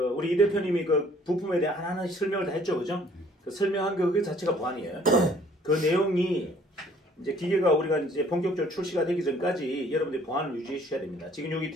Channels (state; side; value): normal; both; correlation 0.58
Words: 우리 이 대표님이 그 부품에 대한 하나하나 설명을 다 했죠, 그죠? 그 설명한 그 자체가 보안이에요. 그 내용이 이제 기계가 우리가 이제 본격적으로 출시가 되기 전까지 여러분들이 보안을 유지해 주셔야 됩니다. 지금 여기